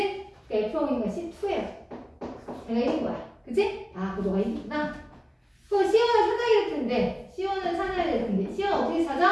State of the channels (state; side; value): identical; both; correlation 1.00